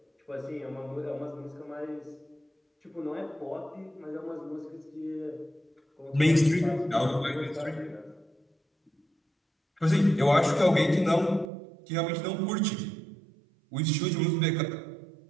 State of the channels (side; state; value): left; drops out; at 11.5 s